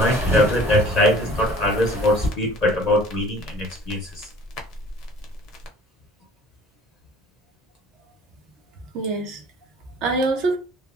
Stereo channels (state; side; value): normal; both; correlation 0.49